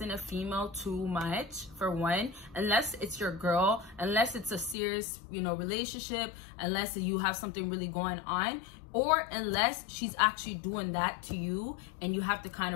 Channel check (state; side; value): drops out; right; at 4.8 s